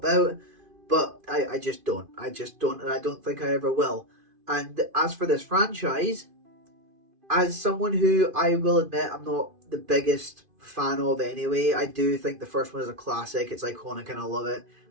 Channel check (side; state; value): left; late; 2.5 ms